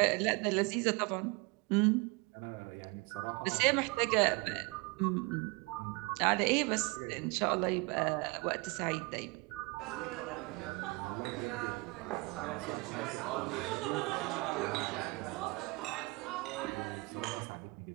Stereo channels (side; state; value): left; quieter; 26.8 dB